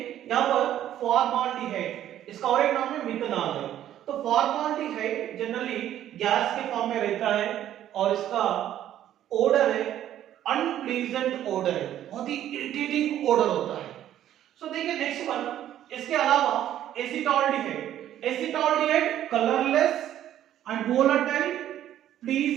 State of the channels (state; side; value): quieter; left; 11.7 dB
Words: यहां पर फॉर्माल्डिहाइड, इसका और एक नाम है मिथेनॉल है। तो फॉर्माल्डिहाइड जनरली गैस के फॉर्म में रहता है और इसका ओडर है अनप्लीजेंट ओडर है, बहुत ही इरिटेटिंग ओडर होता है। सो देखिए नेक्स्ट वन, इसके अलावा acetaldehyde, acetaldehyde colourless and volatile